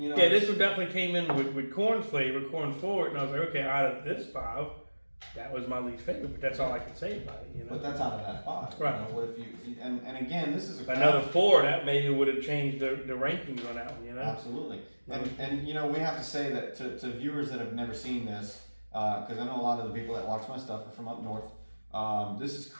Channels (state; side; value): inverted; both; correlation -1.00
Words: this one definitely came in with corn flavor, corn forward, and I was like, okay, out of this 5, that was my least favorite, but that's all I can say about it, But that's out of that 5. Right. What if you and again, this is Another 4, that maybe would have changed the rankings on that one, Absolutely. And we have to say that to viewers that have never seen this, because I know a lot of the people that watch my stuff are from up north. This is